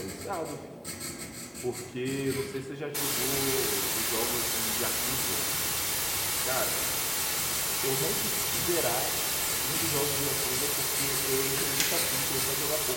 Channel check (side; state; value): both; identical; correlation 1.00